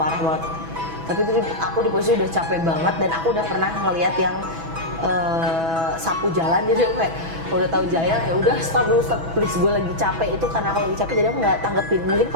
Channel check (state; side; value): late; left; 6.1 ms